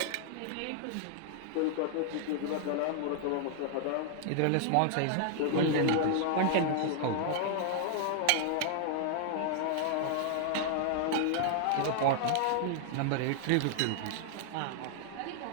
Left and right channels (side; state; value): both; different; correlation -0.01